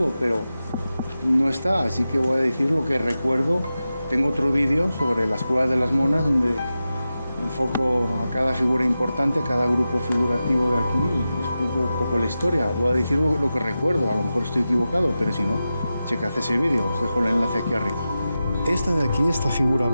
pero no está, así que voy a decir lo que recuerdo. Tengo otro vídeo sobre las Cuevas de las Monas donde enfoco a cada figura importante, a cada grupo figurativo de aquí y explico un poco la historia. Voy a decir lo que recuerdo, a lo mejor estoy equivocado, pero si no, checad ese vídeo, os dejo el enlace aquí arriba. Esta de aquí, esta figura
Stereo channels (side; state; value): both; inverted; correlation -0.92